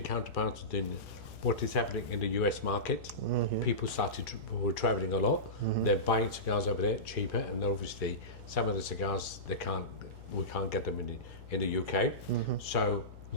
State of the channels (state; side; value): noise; left; hum, 16 dB below the sound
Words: counterparts are doing what is happening in the US market. People were traveling a lot. They're buying cigars over there cheaper, and obviously some of the cigars we can't get them in the UK. So